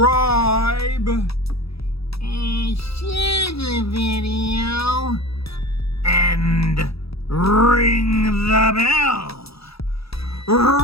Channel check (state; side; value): late; right; 0.77 ms